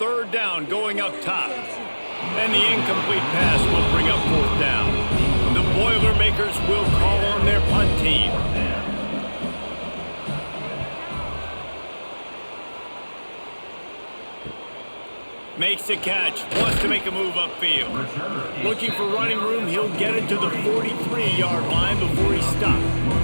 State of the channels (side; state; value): both; inverted; correlation -1.00